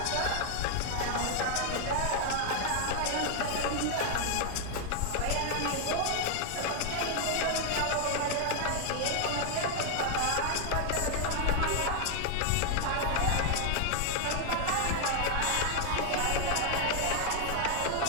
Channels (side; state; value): both; different; correlation 0.00